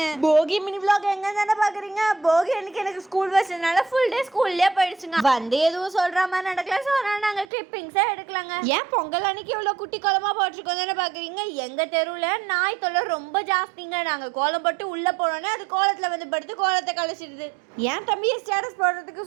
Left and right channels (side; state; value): left; drops out; at 7.5 s